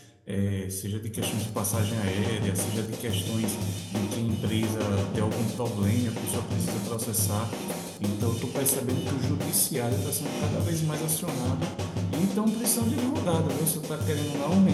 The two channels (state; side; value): identical; both; correlation 1.00